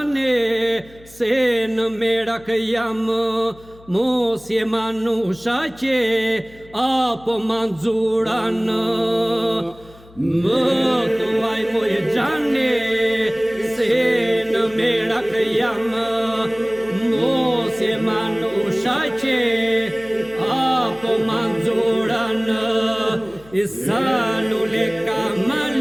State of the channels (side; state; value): left; noise; hum, 24 dB below the sound